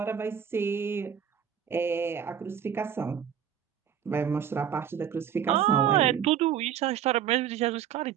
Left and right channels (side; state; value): left; quieter; 8.7 dB